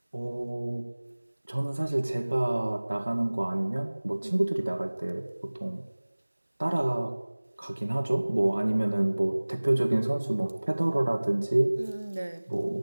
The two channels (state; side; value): inverted; both; correlation -1.00